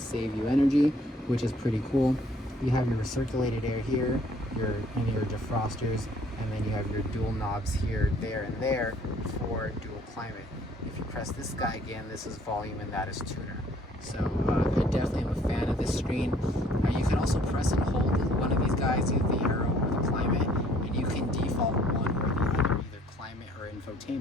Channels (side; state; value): both; normal; correlation 0.60